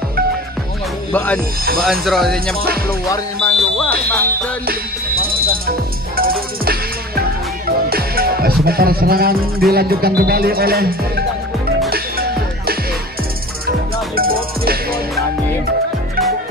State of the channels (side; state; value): both; normal; correlation 0.39